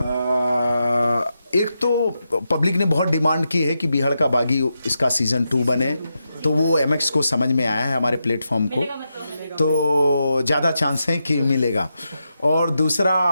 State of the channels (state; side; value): inverted; both; correlation -0.87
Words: एक तो पब्लिक ने बहुत डिमांड की है कि बीहड़ का बागी इसका सीज़न 2 बने, तो वो MX को समझ में आया है, हमारे प्लेटफॉर्म को, तो ज़्यादा चांस है कि मिलेगा। और दूसरा